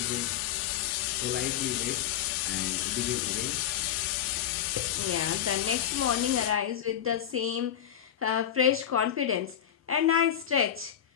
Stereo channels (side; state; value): right; quieter; 10.0 dB